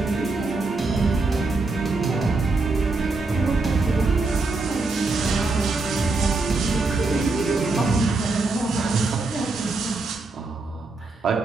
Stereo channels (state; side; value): quieter; left; 3.5 dB